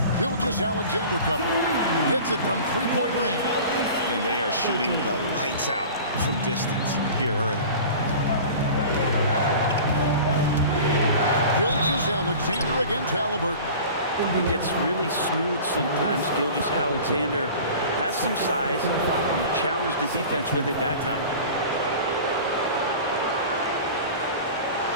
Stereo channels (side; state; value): both; inverted; correlation -0.39